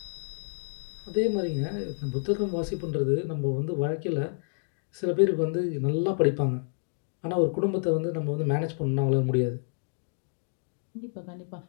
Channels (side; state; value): right; silent; digital silence